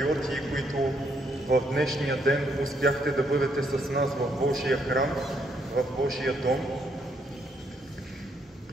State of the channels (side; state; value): both; normal; correlation 0.73